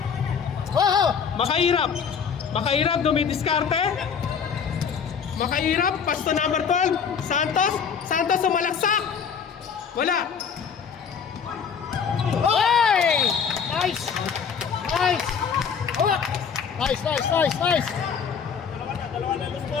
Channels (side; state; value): right; quieter; 6.8 dB